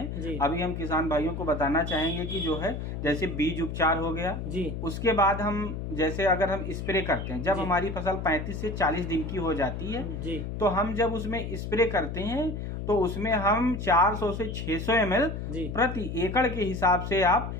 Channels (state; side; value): noise; left; hum, 5 dB below the sound